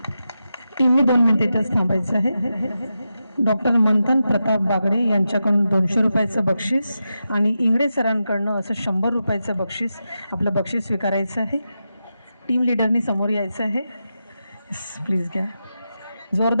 टीमने 2 मिनिटं थांबायचं आहे। डॉक्टर मंथन प्रताप बागडे यांच्याकडून 200 रुपयाचं बक्षीस आणि इंगडे सरांकडनं असं 100 रुपयाचं बक्षीस, आपलं बक्षीस स्वीकारायचं आहे. टीम लिडरनी समोर यायचं आहे. प्लीज घ्या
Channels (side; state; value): both; inverted; correlation -0.89